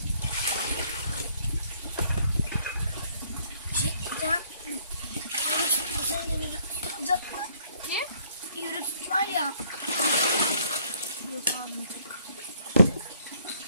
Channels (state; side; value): inverted; both; correlation -0.64